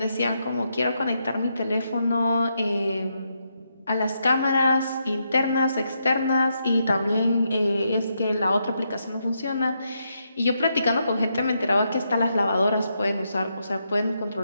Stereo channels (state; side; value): inverted; both; correlation -0.81